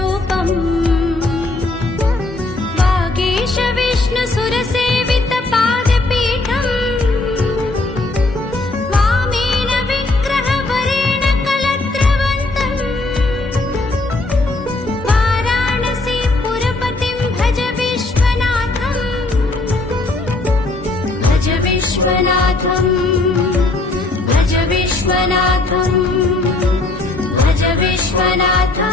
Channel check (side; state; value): right; quieter; 3.1 dB